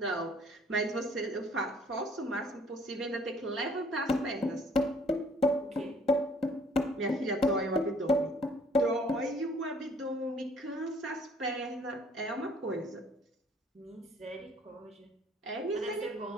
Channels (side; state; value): both; normal; correlation 0.59